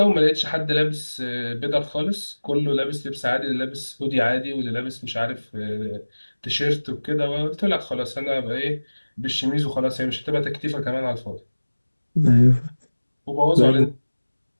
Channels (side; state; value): both; inverted; correlation -1.00